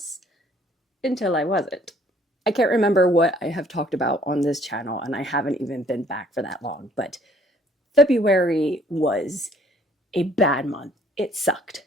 until I wasn't. I can't remember what I have talked about on this channel, and I haven't even been back for that long, but February was a bad month. It sucked.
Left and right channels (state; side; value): normal; both; correlation 0.60